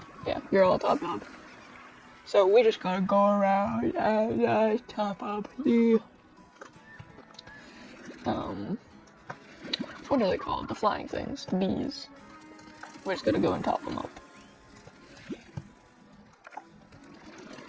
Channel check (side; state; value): both; identical; correlation 1.00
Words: Yeah, you're all top up. So we just gotta go around and top up the what are they called? The flying things, the bees. We're just gonna go and top them up.